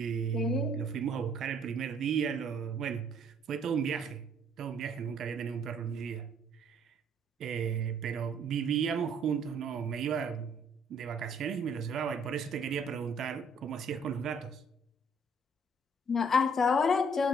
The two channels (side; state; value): both; normal; correlation 0.62